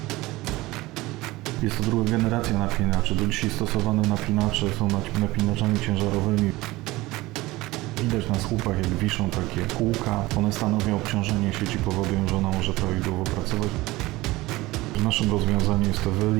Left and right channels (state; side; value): quieter; left; 19.6 dB